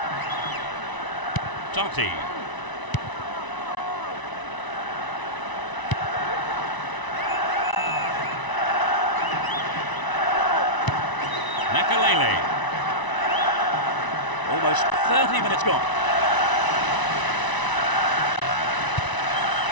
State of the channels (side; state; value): right; late; 1.0 ms